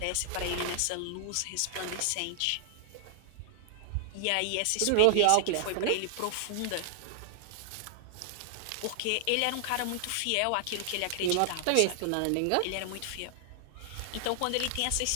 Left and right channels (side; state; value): both; different; correlation 0.00